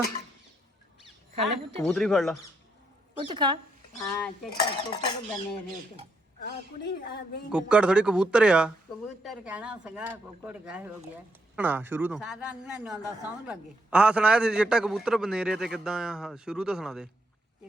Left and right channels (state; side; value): normal; both; correlation 0.77